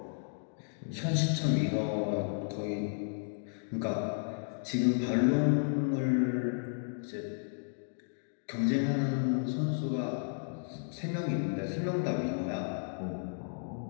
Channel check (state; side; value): silent; right; digital silence